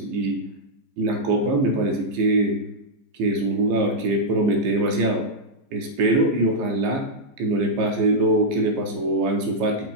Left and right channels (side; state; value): left; late; 15 ms